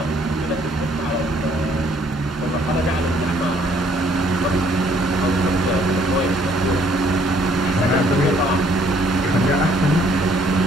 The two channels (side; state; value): both; normal; correlation 0.64